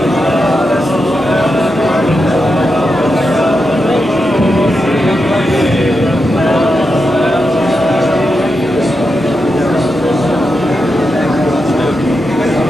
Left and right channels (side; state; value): both; normal; correlation 0.87